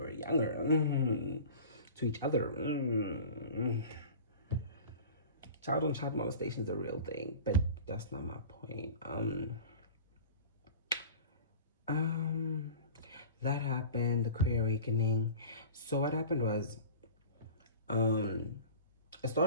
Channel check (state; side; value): inverted; both; correlation -0.39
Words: were younger, to each other. Child on child molestation is a real thing, but that's not my point. That happened, the queer awakening. So what happened was, it